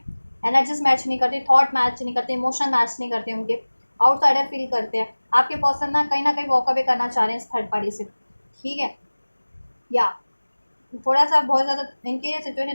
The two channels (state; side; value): inverted; both; correlation -1.00